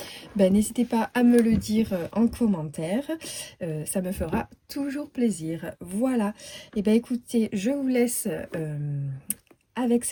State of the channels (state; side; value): identical; both; correlation 1.00